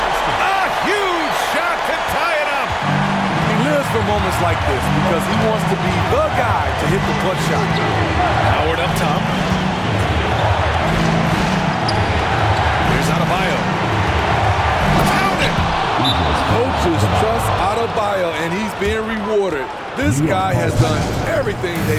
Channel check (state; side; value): identical; both; correlation 1.00